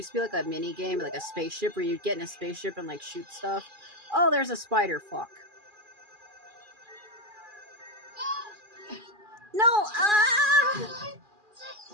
to be like a mini game, like a spaceship, where you'd get in a spaceship and like shoot stuff. Oh, there's a spider. Fuck. No! Ah!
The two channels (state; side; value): late; left; 2.4 ms